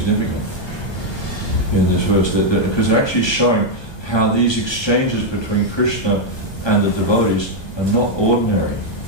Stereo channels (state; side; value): late; right; 1.2 ms